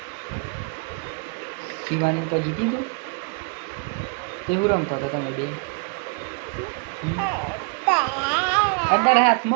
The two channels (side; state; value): left; quieter; 34.7 dB